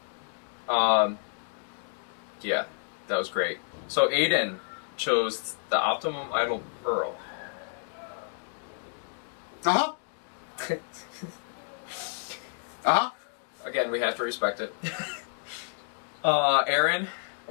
Yeah, that was great. So Aiden chose the Optimum Idol Pearl. Uh-huh. Uh-huh. Again, we have to respect it. Aaron,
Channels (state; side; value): silent; right; digital silence